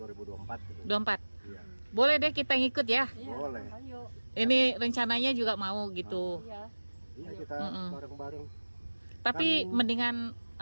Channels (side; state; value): both; inverted; correlation -1.00